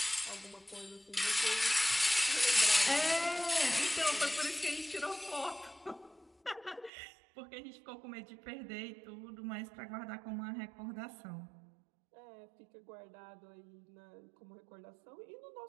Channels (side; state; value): left; drops out; at 6.9 s